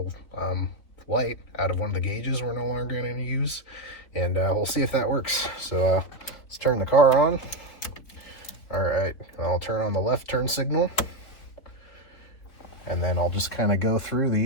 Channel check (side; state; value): right; late; 4.1 ms